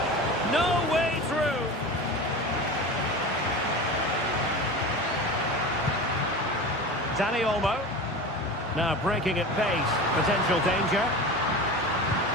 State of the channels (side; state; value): both; normal; correlation 0.31